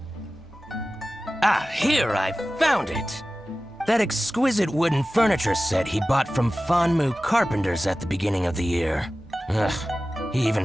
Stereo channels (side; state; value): both; normal; correlation 0.96